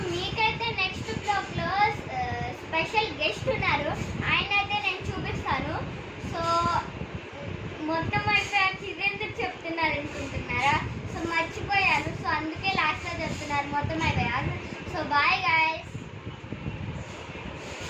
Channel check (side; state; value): both; identical; correlation 1.00